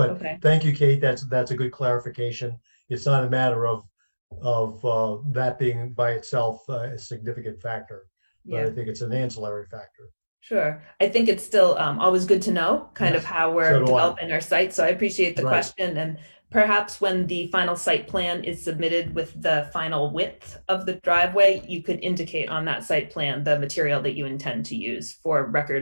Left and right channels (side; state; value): both; inverted; correlation -1.00